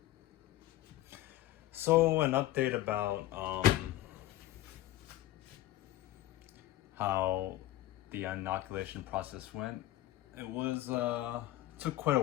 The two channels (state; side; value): quieter; right; 14.9 dB